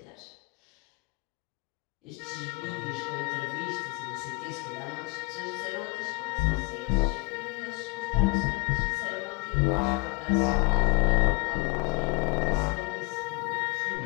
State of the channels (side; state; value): right; quieter; 26.3 dB